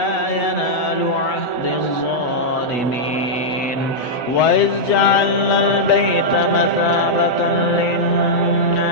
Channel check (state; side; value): late; right; 7.7 ms